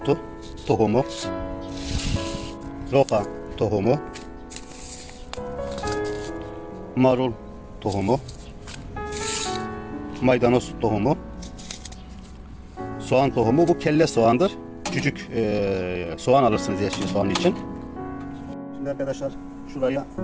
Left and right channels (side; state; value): both; identical; correlation 1.00